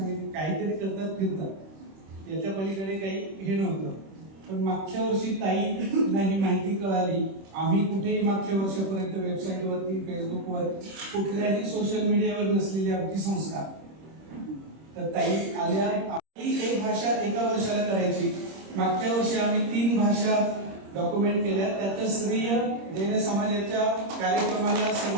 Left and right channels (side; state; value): left; late; 26 ms